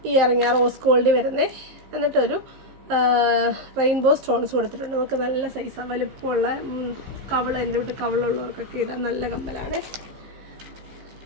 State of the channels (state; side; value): late; left; 15 ms